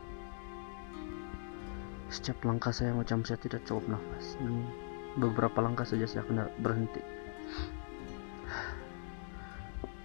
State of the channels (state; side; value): silent; right; digital silence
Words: Setiap langkah saya macam saya tidak cukup nafas, dan beberapa langkah saja saya kena berhenti.